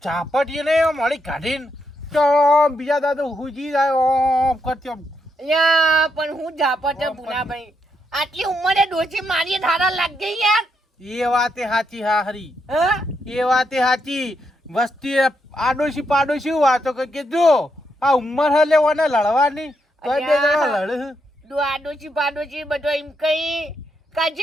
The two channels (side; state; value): both; normal; correlation 0.79